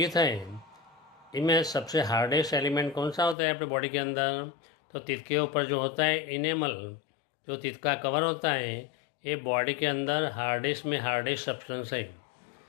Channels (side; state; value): right; drops out; at 3.4 s